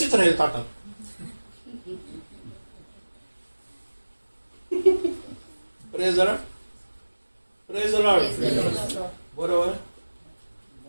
राहील ताटात. Praise the Lord. बरोबर.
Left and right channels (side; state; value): both; inverted; correlation -1.00